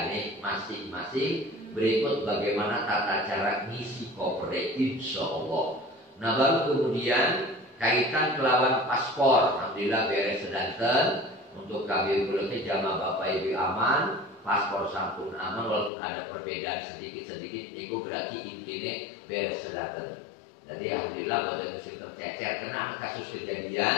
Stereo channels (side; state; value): right; drops out; at 15.9 s